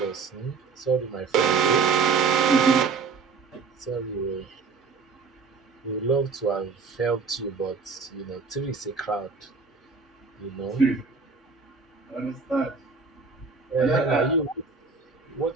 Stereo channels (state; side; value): quieter; left; 4.9 dB